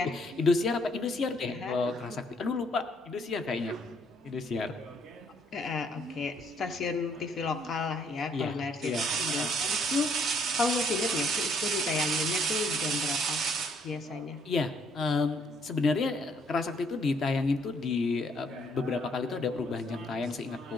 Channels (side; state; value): both; normal; correlation 0.67